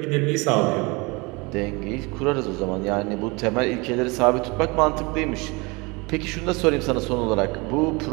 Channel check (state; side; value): quieter; left; 26.6 dB